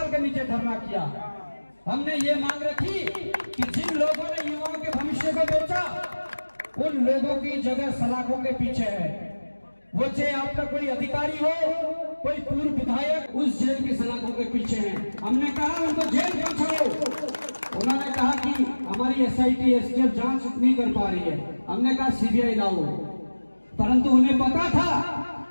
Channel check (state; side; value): inverted; both; correlation -1.00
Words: के नीचे धरना किया। हमने ये मांग रखी कि जिन लोगों ने युवाओं के भविष्य को बेचा, उन लोगों की जगह सलाखों के पीछे है। वो चाहे आपका कोई अधिकारी हो, कोई पूर्व विधायक, उस जेल की सलाखों के पीछे है। हमने कहा उनको जेल पहुंचाओ। उन्होंने कहा कि हमारी SIT STF जांच नहीं कर पा रही है। हमने कहा CBI लाओ, परंतु उन्हें पता था